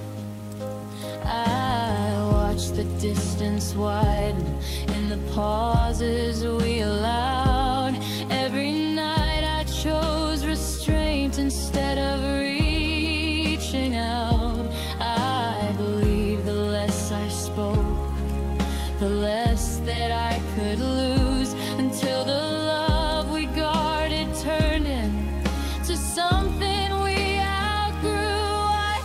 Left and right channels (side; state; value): both; identical; correlation 1.00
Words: I watched the distance widen in the pauses we allowed. Every night I chose restraint instead of reaching out. I believe the less I spoke, the less that I could lose, until the love we guarded turned into something we outgrew. I